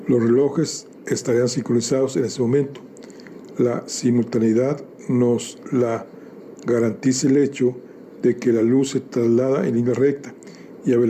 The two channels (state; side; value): identical; both; correlation 1.00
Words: Los relojes estarían sincronizados en ese momento. La simultaneidad nos la garantiza el hecho de que la luz se traslada en línea recta y a